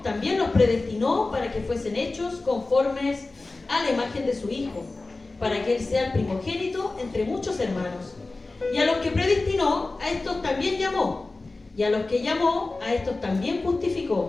también los predestinó para que fuesen hechos conformes a la imagen de su Hijo, para que Él sea el primogénito entre muchos hermanos. Y a los que predestinó, a estos también llamó. Y a los que llamó, a estos también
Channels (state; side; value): quieter; right; 3.4 dB